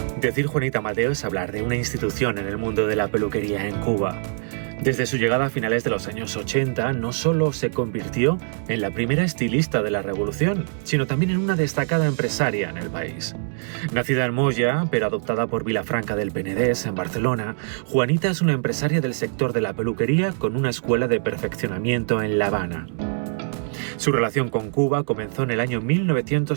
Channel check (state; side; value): silent; left; 63 dB below the other